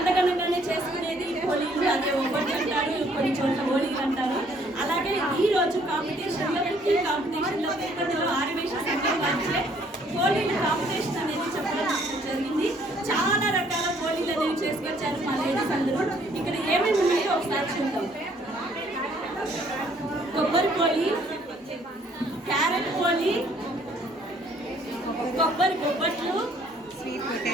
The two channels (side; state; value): both; normal; correlation 0.63